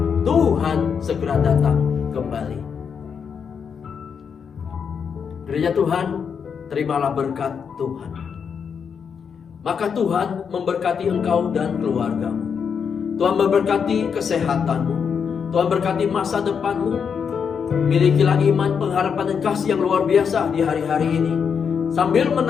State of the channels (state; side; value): quieter; right; 6.7 dB